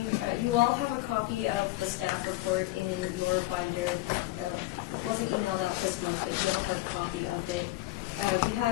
You all have a copy of the staff report in your binder. It wasn't emailed out this month, but you have a hard copy of it. We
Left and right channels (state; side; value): quieter; right; 18.8 dB